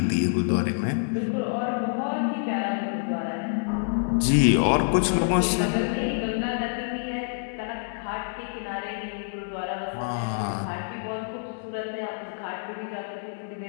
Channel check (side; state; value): right; silent; digital silence